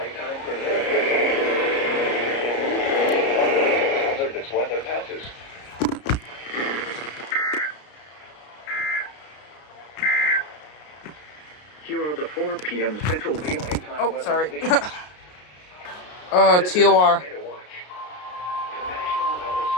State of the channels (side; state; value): right; late; 33 ms